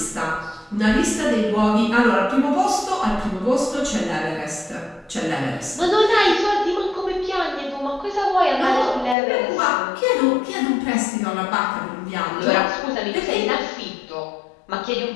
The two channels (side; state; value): right; drops out; at 9.2 s